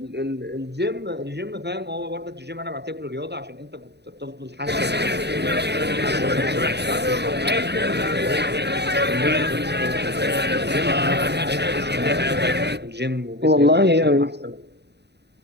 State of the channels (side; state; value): left; late; 0.49 ms